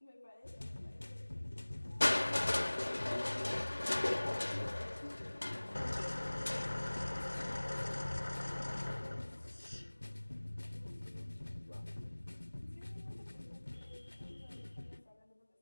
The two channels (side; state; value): both; inverted; correlation -1.00